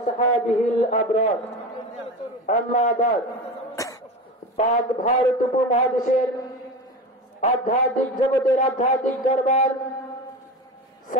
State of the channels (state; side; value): normal; both; correlation 0.26